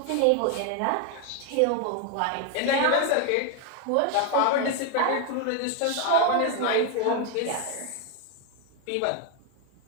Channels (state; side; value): different; both; correlation 0.01